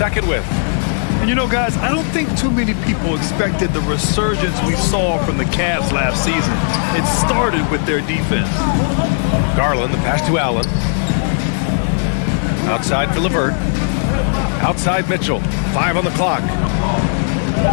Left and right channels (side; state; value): right; silent; 68 dB below the other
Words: with. And you know, guys, I don't think too many people expected the resurgence we saw from the Cavs last season. It started with their defense. Garland, the pass to Allen. Outside for LeVert. Outside Mitchell. 5 on the clock.